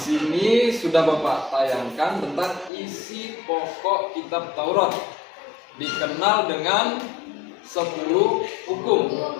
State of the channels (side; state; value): right; drops out; at 2.7 s